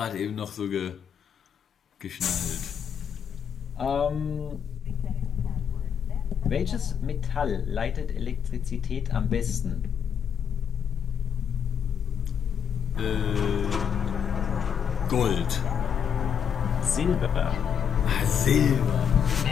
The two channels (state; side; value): quieter; right; 7.9 dB